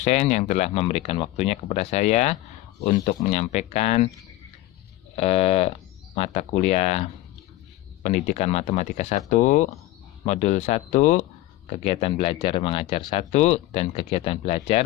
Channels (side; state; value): right; quieter; 16.7 dB